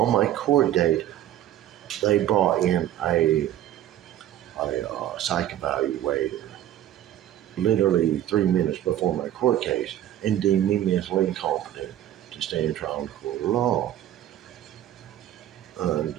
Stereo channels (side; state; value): left; quieter; 12.2 dB